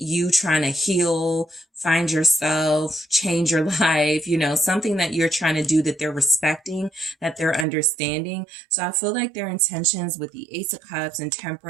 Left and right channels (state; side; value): drops out; left; at 7.7 s